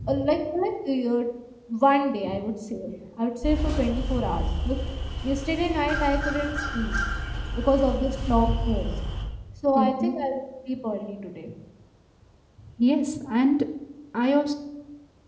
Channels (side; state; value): both; identical; correlation 1.00